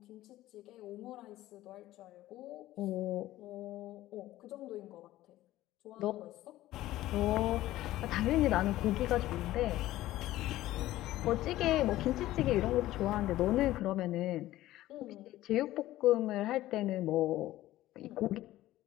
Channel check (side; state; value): right; quieter; 15.4 dB